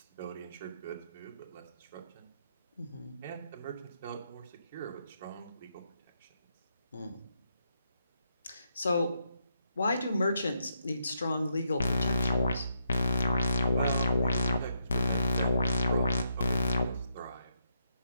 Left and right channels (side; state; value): both; inverted; correlation -0.79